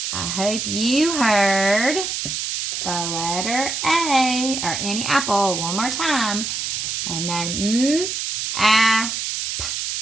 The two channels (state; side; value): noise; right; hiss, 3 dB below the sound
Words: I hope you heard the letter A, or Annie Apple, one more time. And then p.